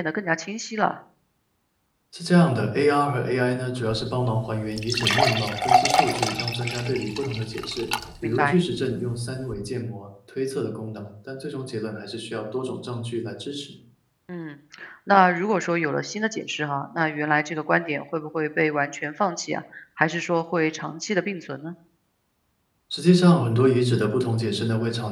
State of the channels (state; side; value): identical; both; correlation 1.00